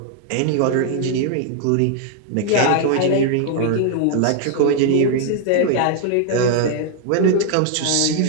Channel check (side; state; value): both; different; correlation 0.00